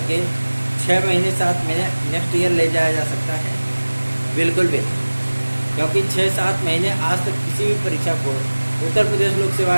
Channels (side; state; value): both; inverted; correlation -1.00